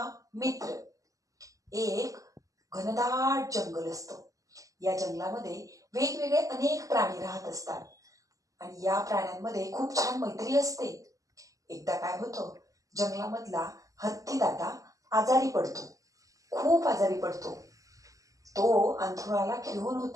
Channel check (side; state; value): left; late; 0.16 ms